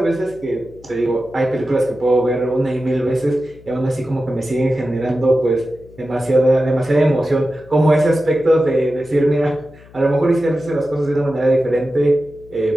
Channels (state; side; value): noise; left; hum, 24 dB below the sound